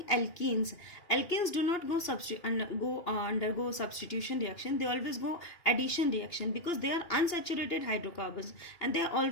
alkenes. Alkenes do not undergo substitution reaction. They always go addition reaction because they are unsaturated hydrocarbons and they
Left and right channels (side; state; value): right; late; 2.9 ms